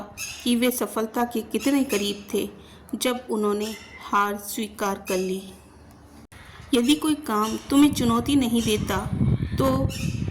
कि वे सफलता के कितने करीब थे जब उन्होंने हार स्वीकार कर ली। यदि कोई काम तुम्हें चुनौती नहीं देता, तो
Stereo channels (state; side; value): identical; both; correlation 1.00